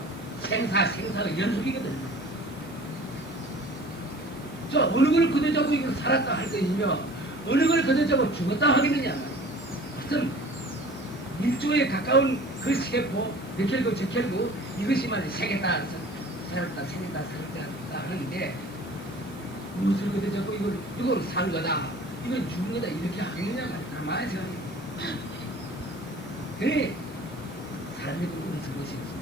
생사가 연속이거든요. 저 어느 걸 거둬잡고 이걸 살았다 할 것이며 어느 걸 거둬잡고 죽었다 하겠느냐. 하여튼 밀조에 가까운 그 세포 몇결구 저결구 이것이 말이야 생겼다 살았다 하는데 무엇을 거둬잡고 이걸 산 거다 이건 죽은 거다 이렇게 하겠느냐 말이야. 가만히 생각해. 그래 사람이 그런 것이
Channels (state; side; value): normal; both; correlation 0.45